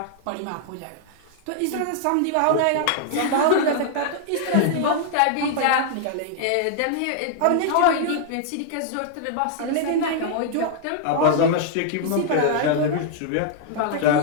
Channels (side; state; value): both; different; correlation -0.01